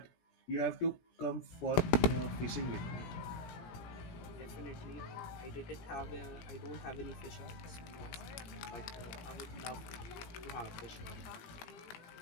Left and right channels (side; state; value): right; late; 17 ms